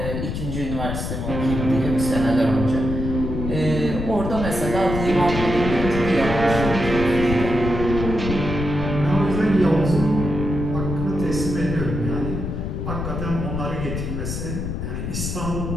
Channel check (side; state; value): left; noise; rumble, 4 dB below the sound